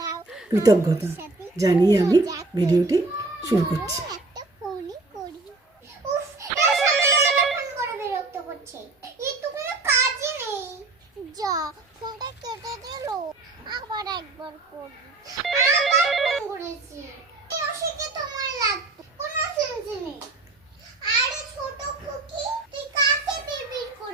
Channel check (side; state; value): left; quieter; 3.3 dB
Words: কৃতজ্ঞতা জানিয়ে আমি ভিডিওটি শুরু করছি। আবার একবার করি আবার ফোন করেছি অশিকে তোমার লাগতো কোনো সেন্স নেই। আরে ছোট খুকি তুই কাকে বিড়বিড়